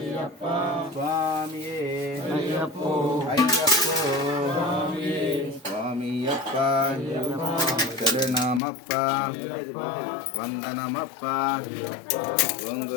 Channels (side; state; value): right; drops out; at 8.6 s